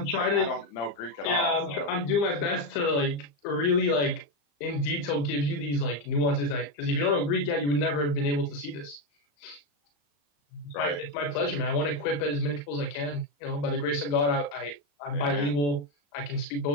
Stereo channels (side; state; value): right; late; 34 ms